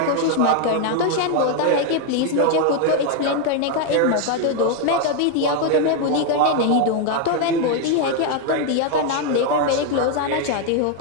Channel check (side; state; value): both; different; correlation 0.01